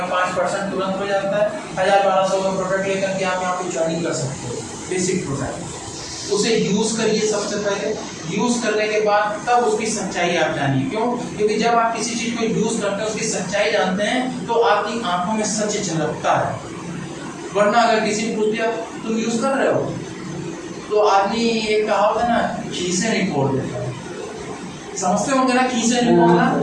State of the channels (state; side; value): identical; both; correlation 1.00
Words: 5% तुरंत हो जाता है। 1000-1200 का प्रोडक्ट लेकर के आप यहाँ पे ज्वाइनिंग कर सकते हो, बेसिक प्रोडक्ट। उसे यूज़ करिए सबसे पहले, यूज़ करने के बाद तब उसकी सच्चाई आप जानिए। क्यों? क्योंकि जब आप किसी चीज़ को यूज़ करते हैं, उसकी सच्चाई जानते हैं, तो आपकी आंखों में सच झलकता है। वरना अगर किसी ने पूछ दिया तुम यूज़ कर रहे हो, तो आदमी एक कहावत है ना, खीसे नहीं फोड़ देता है, समझते होंगे ना, खीसे नहीं फोड़ना